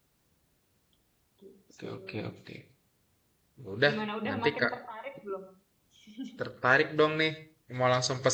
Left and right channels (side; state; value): both; identical; correlation 1.00